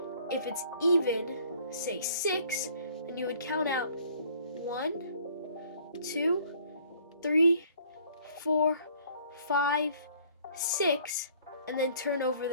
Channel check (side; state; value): both; inverted; correlation -0.57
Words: If it's even, say 6, then you would count out 1, 2, 3, 4, 5, 6, and then turn over